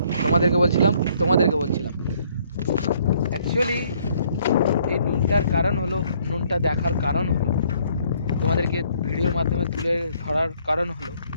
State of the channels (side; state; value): both; inverted; correlation -0.64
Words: তোমাদেরকে বলছিলাম actually এই নুনটার কারণ হলো, নুনটা দেখার কারণ হলো, তোমাদেরকে ভিডিওর মাধ্যমে তুলে ধরার কারণ হলো